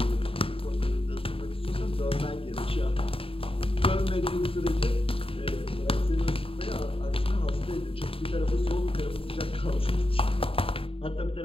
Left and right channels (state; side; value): late; right; 0.27 ms